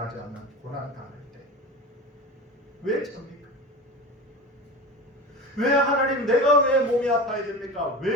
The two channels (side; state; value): both; normal; correlation 0.30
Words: 않는 고난 당할 때 왜 접니까? 왜 하나님, 내가 왜 몸이 아파야 됩니까?